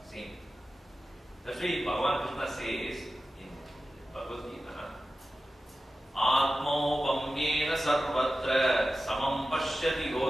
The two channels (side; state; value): both; normal; correlation 0.94